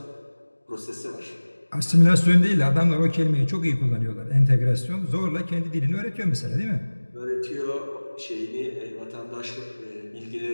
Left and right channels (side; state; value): both; inverted; correlation -1.00